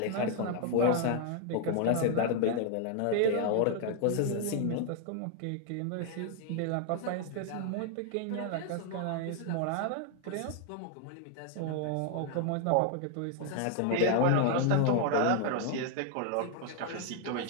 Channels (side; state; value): both; different; correlation 0.00